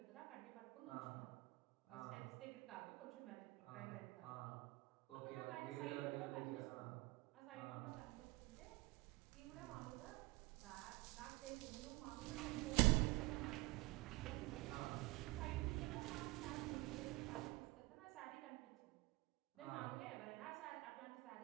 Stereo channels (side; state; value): left; quieter; 22.4 dB